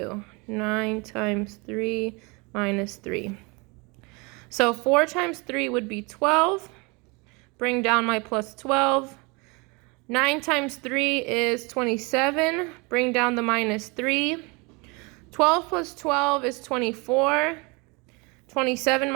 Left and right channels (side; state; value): left; quieter; 28.6 dB